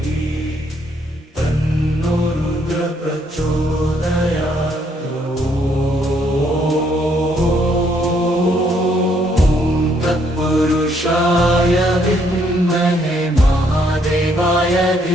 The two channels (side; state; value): both; normal; correlation 0.70